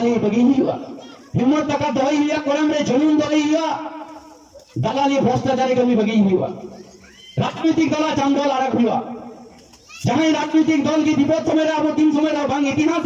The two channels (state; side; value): identical; both; correlation 1.00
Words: बगी हुआ हिम्मत ताकत दई हुआ कोरम रे जमीन दई हुआ दलाली भ्रष्टाचारी कमी बगी हुआ राजनीतिक दल चांदोल आरक हुआ जहां राजनीतिक दल की विपद समय अब 3 समय बांग इतिहास